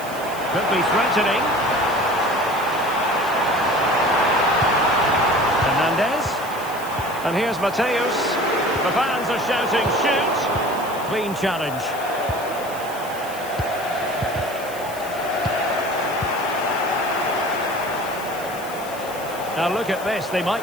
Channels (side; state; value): left; noise; hiss, 16 dB below the sound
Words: Could be threatening. Hernandez. And here's Mateus. The fans are shouting, shoot. Clean challenge. Now look at this. They